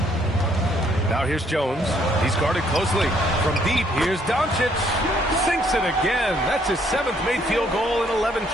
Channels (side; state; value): both; normal; correlation 0.67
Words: Now here's Jones. He's guarded closely. From deep, here's Doncic. Sinks it again. That's his 7th made field goal in 11